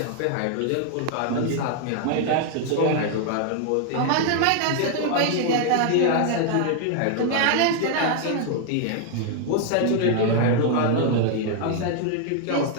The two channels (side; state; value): both; different; correlation 0.00